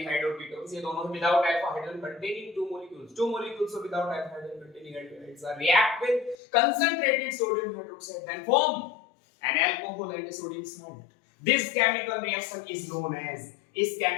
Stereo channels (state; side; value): drops out; right; at 6.4 s